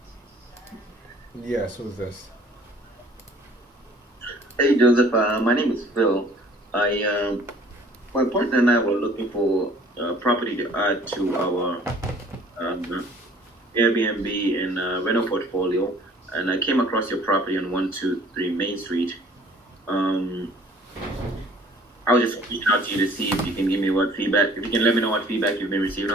Yes, who's this? Hey, Joseph. My name is Phil. My partner and I were looking for property to add to our Airbnb and rental portfolio, and I came across your property on 123 Main Street. I was just reaching out to you to see if you can give me what feedback, if you can let me know what feedback you've been receiving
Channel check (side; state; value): both; normal; correlation 0.53